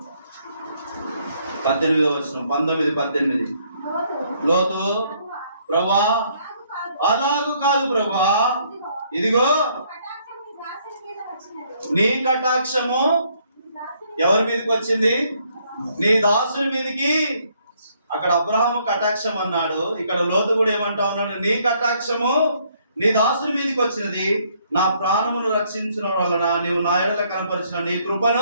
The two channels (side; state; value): both; inverted; correlation -0.68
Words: 18వ వచనం 19-18. లోతు, ప్రభువా అలాగు కాదు ప్రభువా, ఇదిగో నీ కటాక్షము ఎవరి మీదకి వచ్చింది? నీ దాసుని మీదకి. అక్కడ అబ్రహాము కటాక్షం అన్నాడు, ఇక్కడ లోతు కూడా ఏమంటా ఉన్నాడు? నీ కటాక్షము నీ దాసుని మీదకి వచ్చినది, నా ప్రాణమును రక్షించిన వలన నీవు నా ఎడల కనపరిచిన నీ